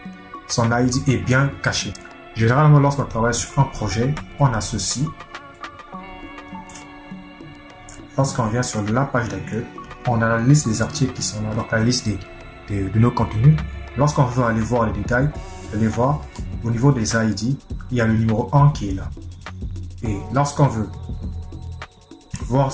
Son ID est bien caché. Généralement, lorsqu'on travaille sur un projet, on a ceci. Lorsqu'on vient sur la page d'accueil, on a la liste des articles qui sont là, donc la liste de nos contenus. Lorsqu'on veut aller voir les détails, vous allez voir au niveau des ID, il y a le numéro 1 qui est là. Et lorsqu'on veut voir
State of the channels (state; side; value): identical; both; correlation 1.00